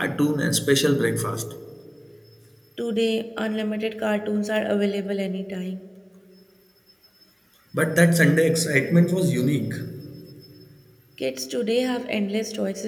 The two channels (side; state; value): both; identical; correlation 1.00